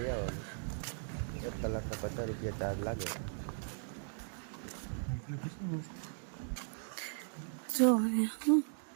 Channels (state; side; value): silent; left; digital silence